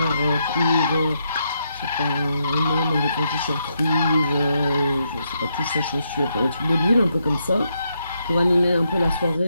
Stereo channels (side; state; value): both; inverted; correlation -0.80